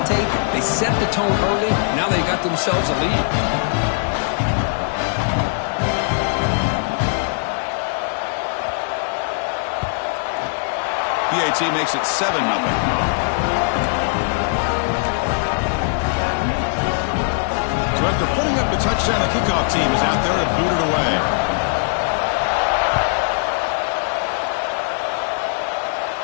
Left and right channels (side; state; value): right; silent; 65 dB below the other